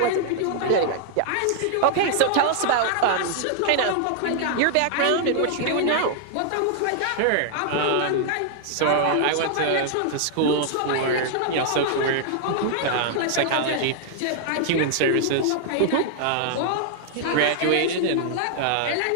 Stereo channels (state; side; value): different; both; correlation -0.01